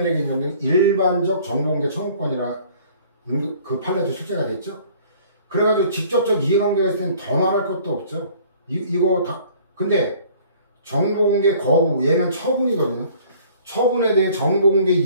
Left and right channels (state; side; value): inverted; both; correlation -0.53